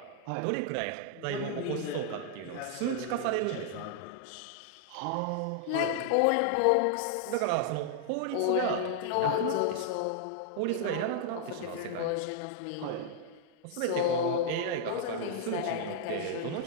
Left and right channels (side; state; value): both; different; correlation -0.01